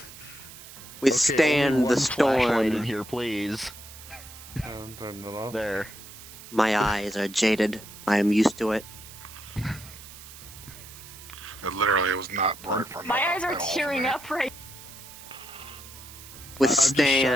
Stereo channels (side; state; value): right; noise; hiss, 16 dB below the sound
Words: Withstand the Flashlight in storm. here, please. Turn it off. There. My eyes are jaded. I am used to it. Literally, it was not bright for me. My eyes are tearing up right. Withstand,